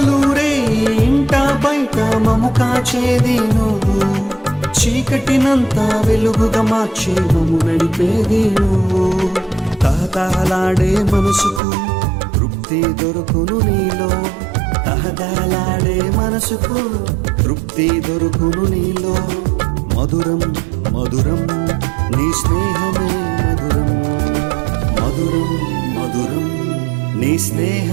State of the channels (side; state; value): left; drops out; at 11.6 s